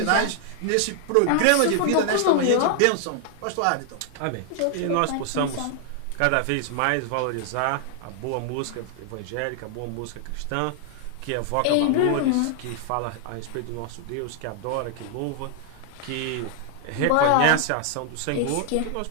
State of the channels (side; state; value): both; different; correlation 0.00